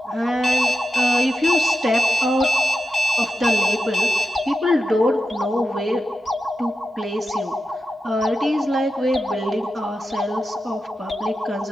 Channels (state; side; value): normal; both; correlation 0.89